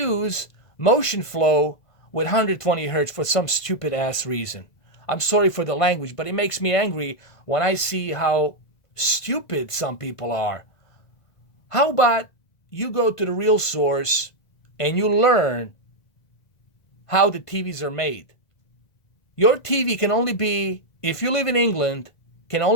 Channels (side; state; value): right; late; 1.5 ms